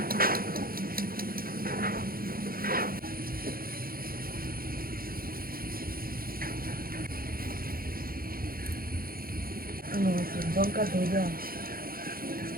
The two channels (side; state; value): left; late; 0.42 ms